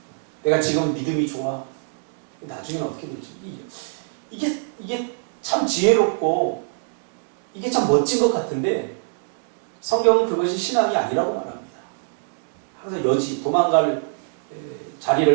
내가 지금 믿음이 좋아. 나중에는 어떻게 될지. 이게 참 지혜롭고 이게 참 멋진 것 같은데 성경은 그것이 신앙이 아니라고 말합니다. 항상 여지, 도망갈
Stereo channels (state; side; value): silent; left; digital silence